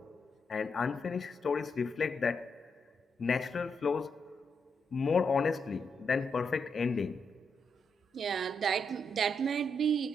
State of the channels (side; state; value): both; normal; correlation 0.81